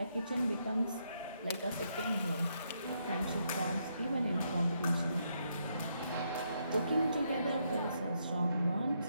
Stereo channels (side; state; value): both; inverted; correlation -0.77